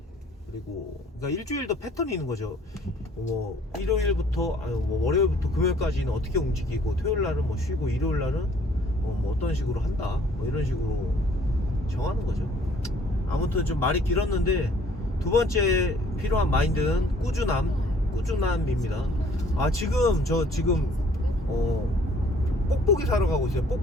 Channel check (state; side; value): normal; both; correlation 0.58